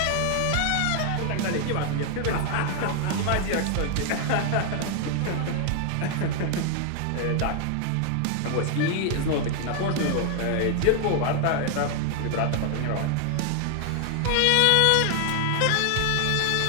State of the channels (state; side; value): different; both; correlation 0.00